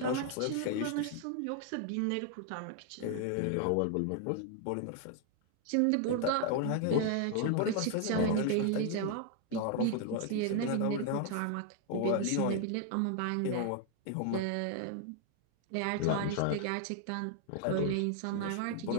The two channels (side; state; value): both; different; correlation 0.00